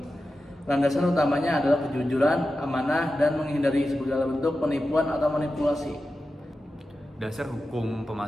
Landasan utamanya adalah kejujuran, amanah, dan menghindari segala bentuk penipuan atau manipulasi. Dasar hukum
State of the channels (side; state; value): both; normal; correlation 0.92